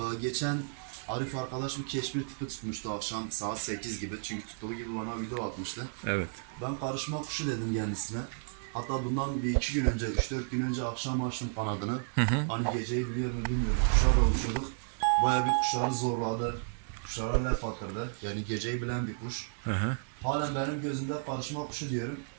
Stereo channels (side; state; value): left; silent; 56 dB below the other